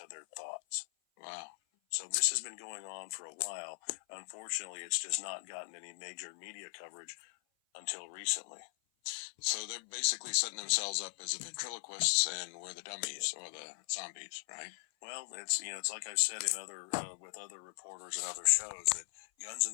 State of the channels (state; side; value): silent; right; 52 dB below the other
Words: their thoughts. Wow. So this has been going on for a while. Unfortunately, it's just not gotten any major media coverage until recently. So they're basically setting themselves up as the ventriloquists, and we're the dummies or the zombies, right? Well, it's like I've said in other with other reporters and other shows, that guns